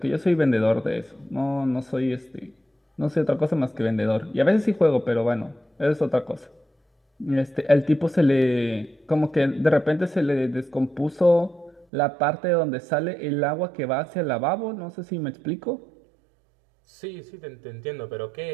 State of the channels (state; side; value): drops out; left; at 11.9 s